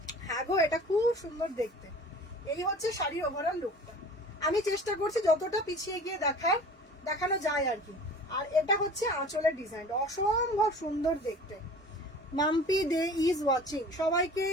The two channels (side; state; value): both; normal; correlation 0.43